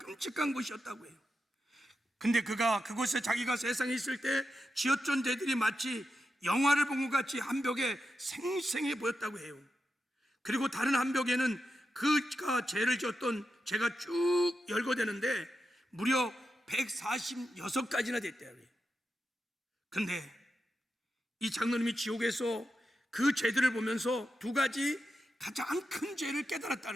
곳이었다고 해요. 근데 그가 그곳에 자기가 세상에 있을 때 지었던 죄들이 마치 영화를 본 것 같이 한 벽에 생생해 보였다고 해요. 그리고 다른 한 벽에는 그가 죄를 지었던 죄가 쭉 열거되는데 무려 146가지나 됐대요. 근데 이 장로님이 지옥에서 그 죄들을 보면서 두 가지 가장 큰 죄를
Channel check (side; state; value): both; normal; correlation 0.88